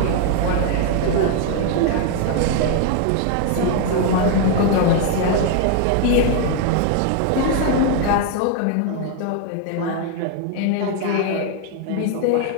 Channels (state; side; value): different; both; correlation 0.00